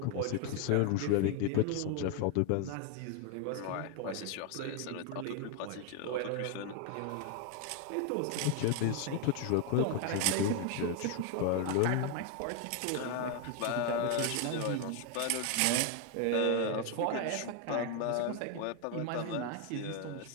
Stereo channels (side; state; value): both; different; correlation 0.01